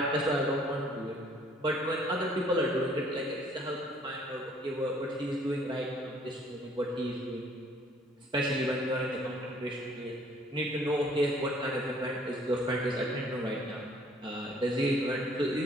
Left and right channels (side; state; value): both; normal; correlation 0.59